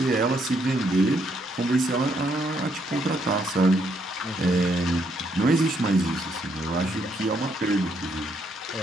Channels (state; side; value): normal; both; correlation 0.73